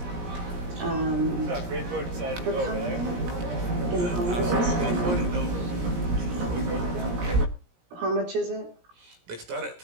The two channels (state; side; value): late; left; 17 ms